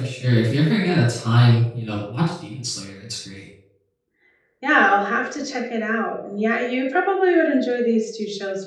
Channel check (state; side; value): identical; both; correlation 1.00